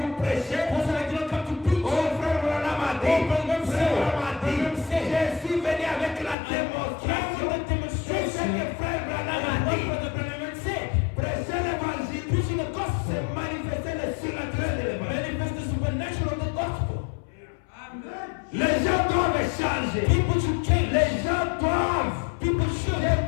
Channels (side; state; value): right; drops out; at 6.4 s